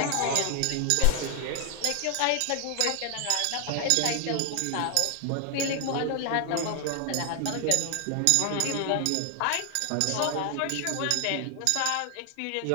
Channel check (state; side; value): different; both; correlation 0.00